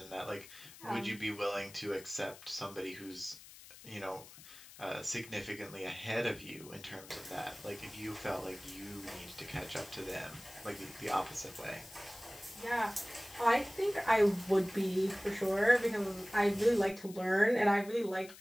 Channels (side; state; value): left; noise; hiss, 18 dB below the sound